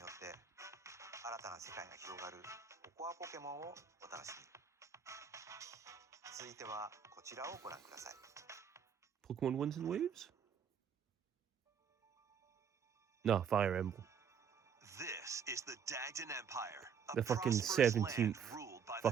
って新たな世界が広がるココアポケモンをお楽しみに。続いてはこちらをご覧ください。 Pokemon Winds and Waves? No, Fire Emblem. This is the Dagden Empire, a The fucking prosperous 17th land ruled by the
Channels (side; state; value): left; quieter; 7.0 dB